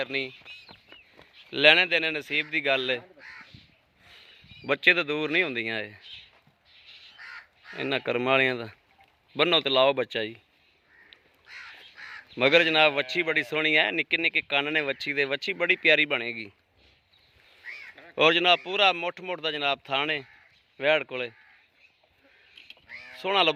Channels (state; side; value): identical; both; correlation 1.00